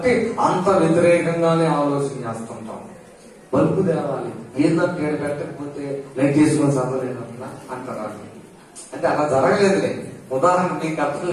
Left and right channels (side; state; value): both; identical; correlation 1.00